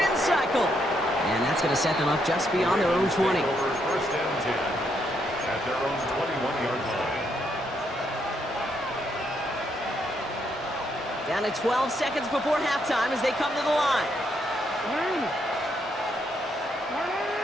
cycle. And that's going to set them up just beyond their own 20. Over first and 10 at their own 21-yard line. Down to 12 seconds before halftime as they come to the line.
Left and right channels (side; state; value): both; normal; correlation 0.76